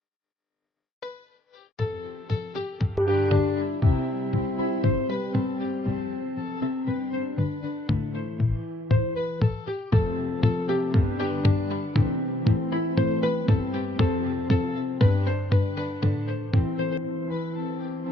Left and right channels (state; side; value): normal; both; correlation 0.70